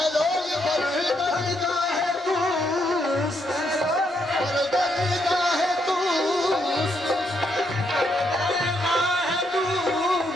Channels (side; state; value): both; normal; correlation 0.76